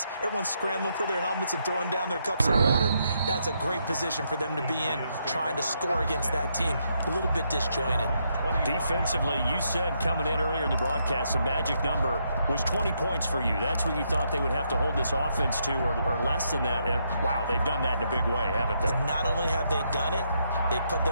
Everyone's scrambling for their helmets and throwing down their cups of water. That's a great position for them to be in, trying to score against that team. A little bit disjointed. Defensively, you said coming in earlier in the broadcast, the magic number was 20 points for you. That's what you thought they would have to hold this offense to, or less than that. And wow, they've done that in a big way, haven't they? And not only have they done it, they put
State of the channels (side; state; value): both; inverted; correlation -0.77